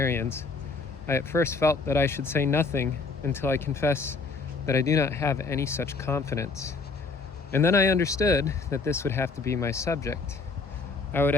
I at first felt that I should say nothing until I confess that I do not have any such confidence. And then I understood that this would have to be my subject. I would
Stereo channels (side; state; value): right; quieter; 4.1 dB